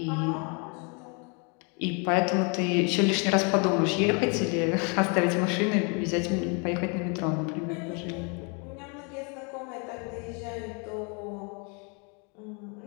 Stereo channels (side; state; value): right; quieter; 34.6 dB